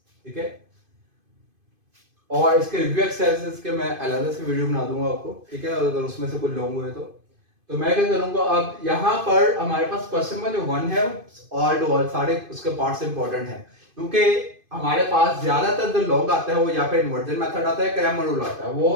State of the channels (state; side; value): late; left; 2.5 ms